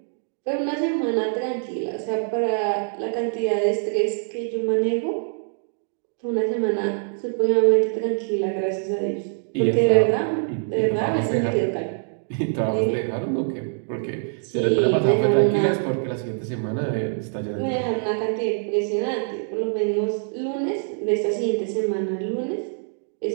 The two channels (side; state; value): left; silent; digital silence